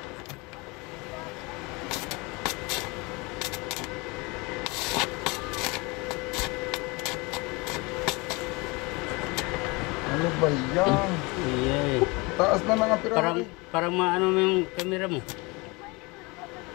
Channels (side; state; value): right; quieter; 26.3 dB